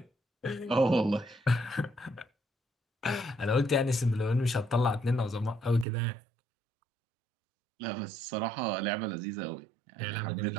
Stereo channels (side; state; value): left; drops out; at 5.9 s